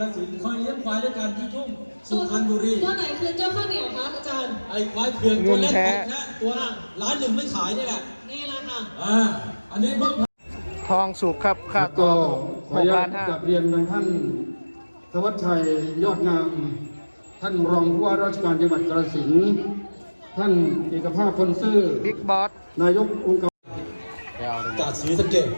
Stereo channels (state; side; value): inverted; both; correlation -1.00